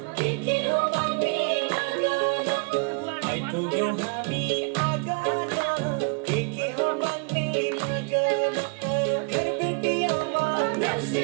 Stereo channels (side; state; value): left; quieter; 34.2 dB